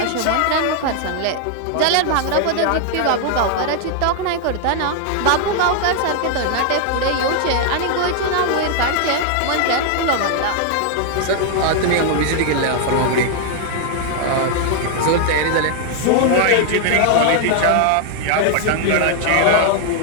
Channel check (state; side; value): different; both; correlation 0.00